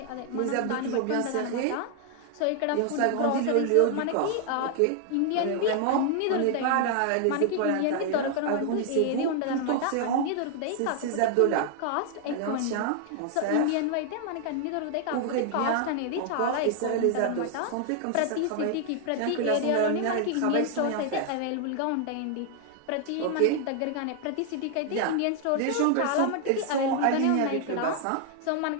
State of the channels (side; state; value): both; different; correlation 0.00